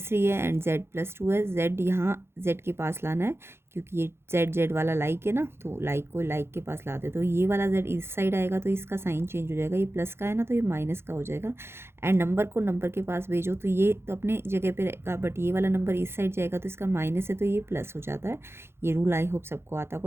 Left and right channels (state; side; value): late; left; 0.12 ms